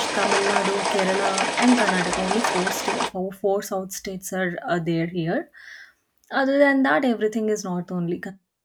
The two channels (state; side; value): identical; both; correlation 1.00